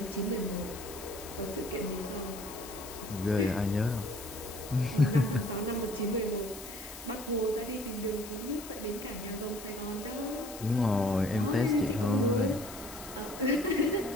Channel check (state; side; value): noise; left; hiss, 13 dB below the sound